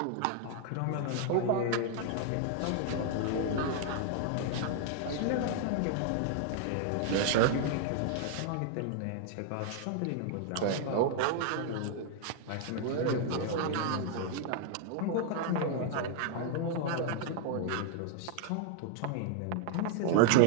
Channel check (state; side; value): different; both; correlation 0.00